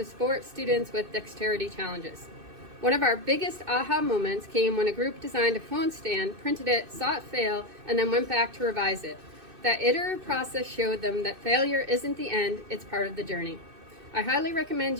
support students with dexterity challenges. One of our biggest aha moments came when a group designed a phone stand, printed it, saw it fail, and then went back to revise it. That iterative process showed them that failure isn't the end, it's part of the journey. I highly recommend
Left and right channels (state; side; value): late; left; 2.6 ms